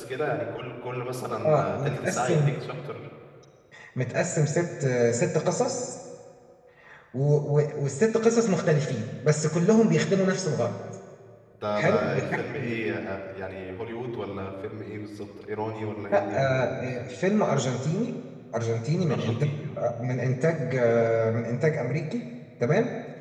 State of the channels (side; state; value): both; identical; correlation 1.00